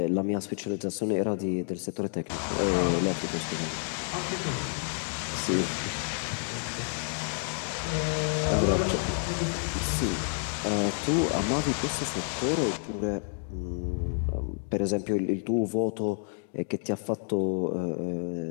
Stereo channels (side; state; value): right; silent; digital silence